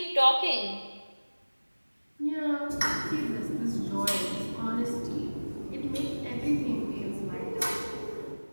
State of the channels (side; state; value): both; inverted; correlation -1.00